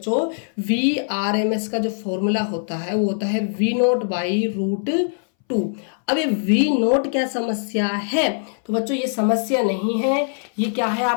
VRMS का जो फॉर्मूला होता है वो होता है V0 बाई √2। अब ये V0 क्या समस्या है, तो बच्चों ये समस्या नहीं है, ये क्या है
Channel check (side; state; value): right; silent; 62 dB below the other